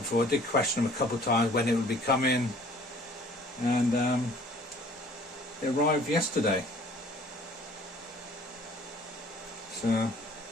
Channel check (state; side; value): normal; both; correlation 0.53